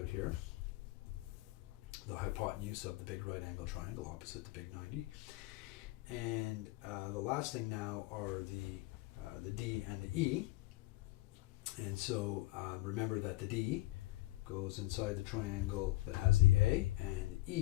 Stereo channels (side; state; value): right; quieter; 17.4 dB